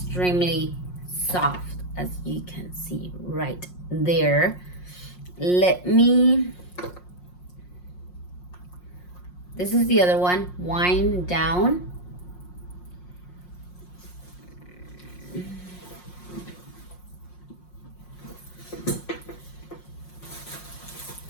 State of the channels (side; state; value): right; late; 5.6 ms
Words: soft, as you can see right there. This is the other one, Wind Down.